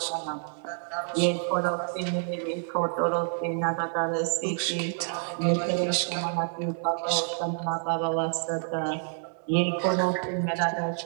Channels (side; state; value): left; silent; 58 dB below the other